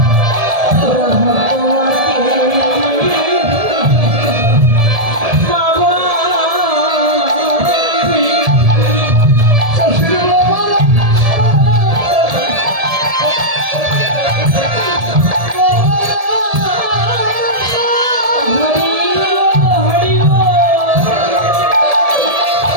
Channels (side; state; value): left; late; 1.7 ms